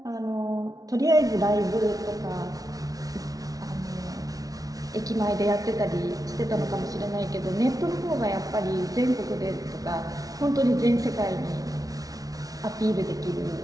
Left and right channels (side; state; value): left; late; 0.18 ms